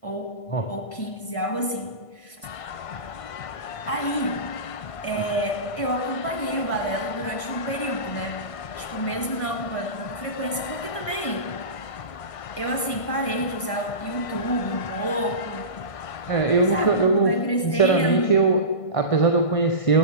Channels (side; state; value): right; late; 1.5 ms